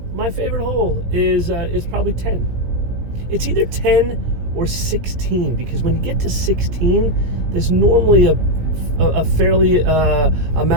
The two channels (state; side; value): late; left; 17 ms